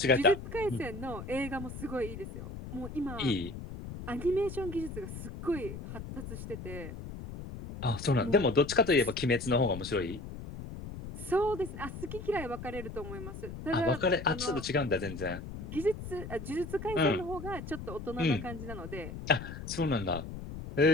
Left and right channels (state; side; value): noise; left; rumble, 10 dB below the sound